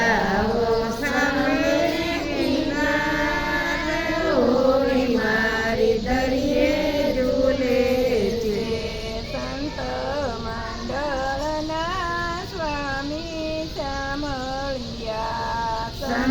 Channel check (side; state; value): both; identical; correlation 1.00